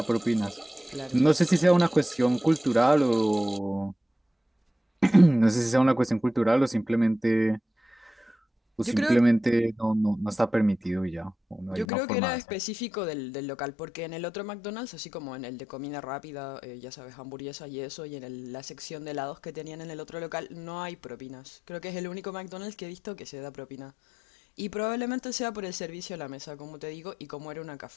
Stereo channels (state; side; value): drops out; right; at 11.9 s